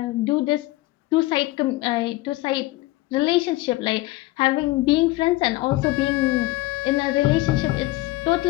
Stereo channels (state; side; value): quieter; right; 19.0 dB